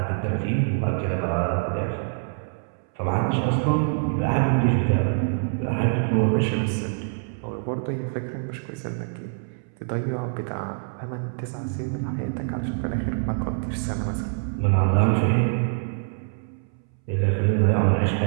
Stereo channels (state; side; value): silent; left; 62 dB below the other